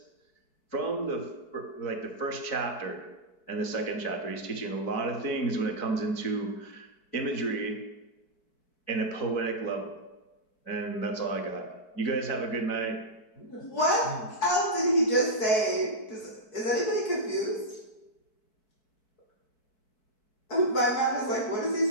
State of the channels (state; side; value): late; right; 4.6 ms